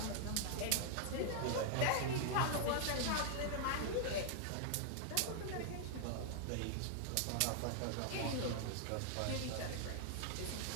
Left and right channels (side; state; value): both; different; correlation 0.00